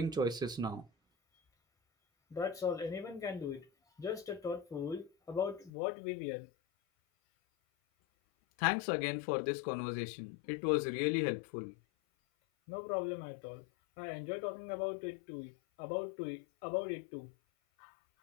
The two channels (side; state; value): right; drops out; at 5.7 s